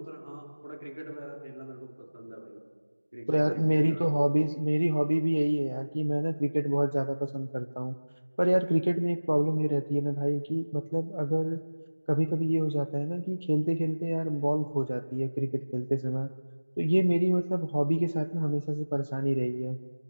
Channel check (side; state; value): both; inverted; correlation -1.00